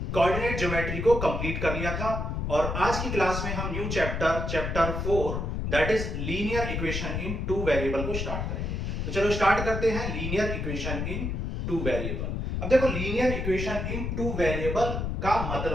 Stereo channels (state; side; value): noise; left; rumble, 2 dB below the sound